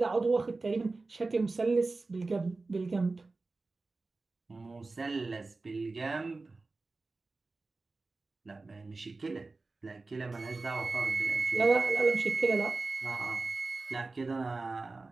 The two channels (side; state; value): left; quieter; 3.6 dB